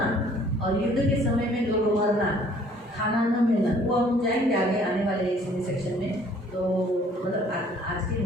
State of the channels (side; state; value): both; normal; correlation 0.57